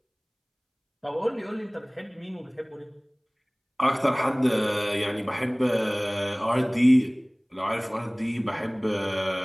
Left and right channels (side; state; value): both; identical; correlation 1.00